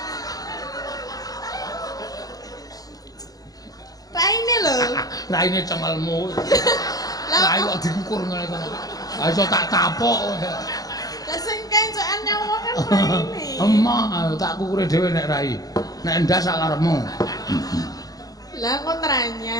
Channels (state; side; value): late; right; 0.18 ms